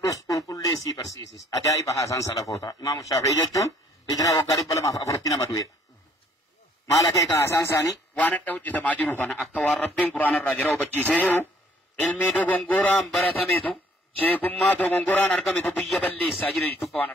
كل ليسي برسيسس أجائب حسن سلفوتا إمام الشافعي جتون إجرا وقارب بلا ما أفرتنا مدوية ما لك حسن ساني وانا توجه تماجرو فانا أكوار ربين قرآن الرجرة وبجيسه علمي دو غنغوران برتميتو شيكما دو غنغوران أرقميتو بيا بلي ساجر جتوك وانا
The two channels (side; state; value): both; normal; correlation 0.61